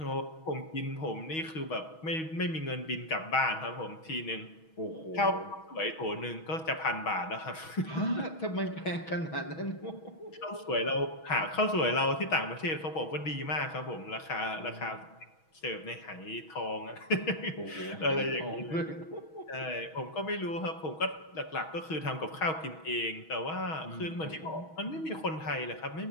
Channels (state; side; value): late; right; 6.3 ms